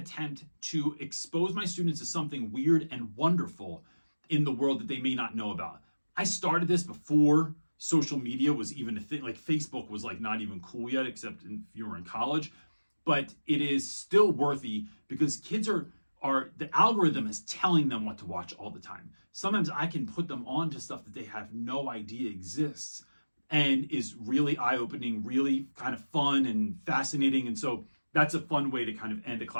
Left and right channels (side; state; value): both; inverted; correlation -1.00